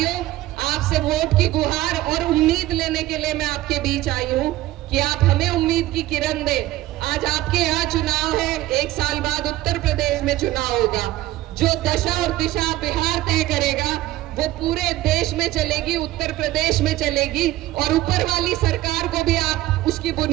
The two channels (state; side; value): quieter; left; 16.1 dB